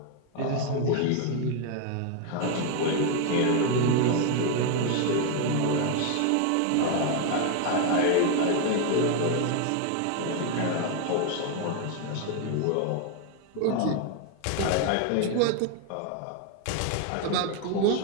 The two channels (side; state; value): both; different; correlation 0.01